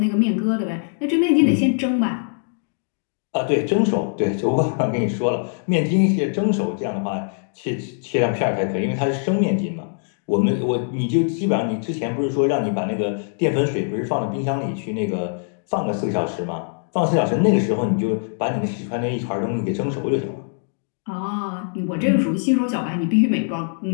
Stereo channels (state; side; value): silent; right; digital silence